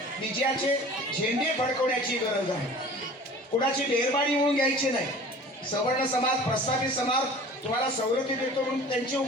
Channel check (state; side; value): normal; both; correlation 0.43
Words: विजयाचे झेंडे फडकवण्याची गरज आहे. कुणाची मेहरबानी म्हणून घ्यायची नाही. सवर्ण समाज, प्रस्थापित समाज तुम्हाला सवलती देतो म्हणून त्यांचे